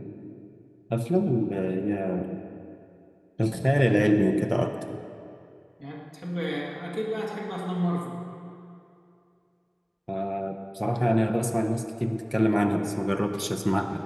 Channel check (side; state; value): both; identical; correlation 1.00